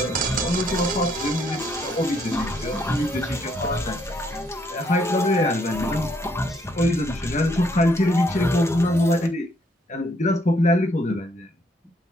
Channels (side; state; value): both; normal; correlation 0.70